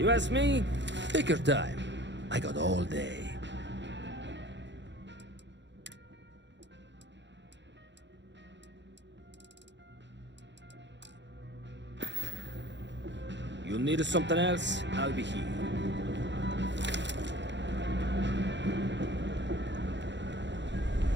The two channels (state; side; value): late; left; 0.52 ms